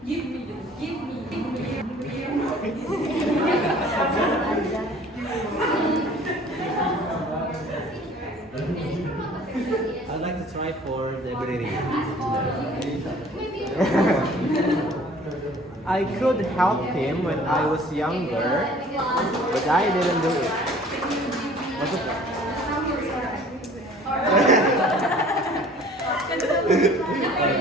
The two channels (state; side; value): normal; both; correlation 0.51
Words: I'd like to try for the ability. I could help him when I was younger, but I didn't do it. What's the point?